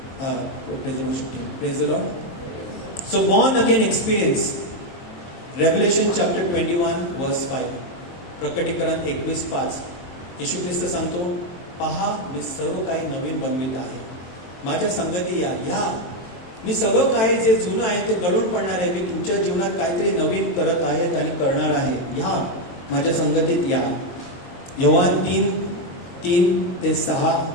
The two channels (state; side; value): late; right; 23 ms